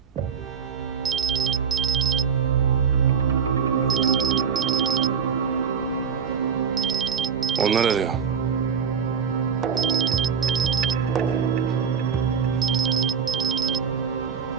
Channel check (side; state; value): left; quieter; 6.8 dB